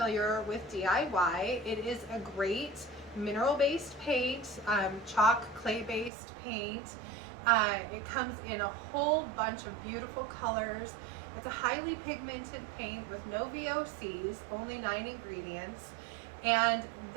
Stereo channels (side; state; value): left; drops out; at 6.1 s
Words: with DIY, it is a great mineral-based paint, chalk, clay-based paint. It comes in a whole bunch of beautiful colors. It's a highly pigmented paint with no VOCs, only 9 ingredients. And